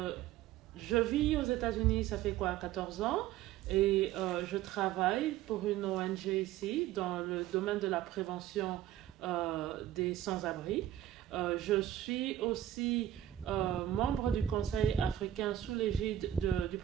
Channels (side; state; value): left; quieter; 12.1 dB